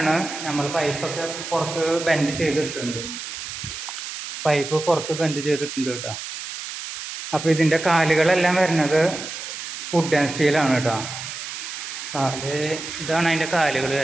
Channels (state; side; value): noise; right; hiss, 8 dB below the sound